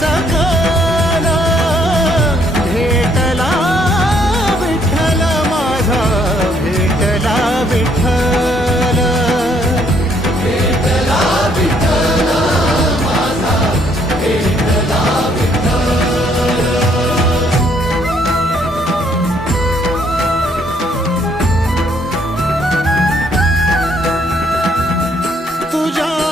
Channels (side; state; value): both; normal; correlation 0.68